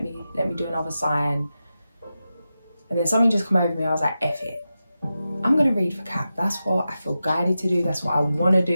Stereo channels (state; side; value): inverted; both; correlation -0.91